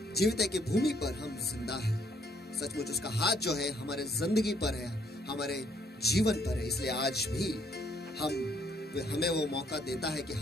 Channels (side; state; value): both; normal; correlation 0.68